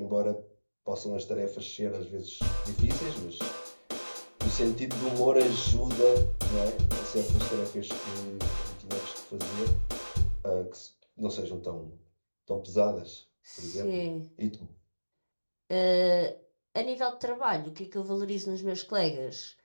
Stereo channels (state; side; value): inverted; both; correlation -1.00